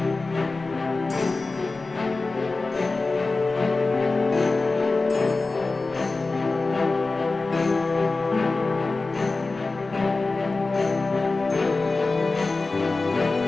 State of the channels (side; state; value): right; quieter; 3.6 dB